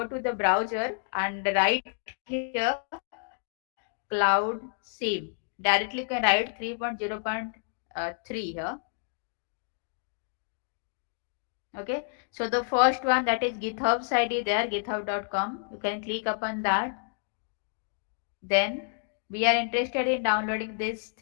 to the browser and write here CloudSim. Directly you can write 3.0.3 here. Okay. So the first one, that is GitHub's ID there, github.com. You can click upon that. Then we are interested in downloading this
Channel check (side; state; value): right; silent; digital silence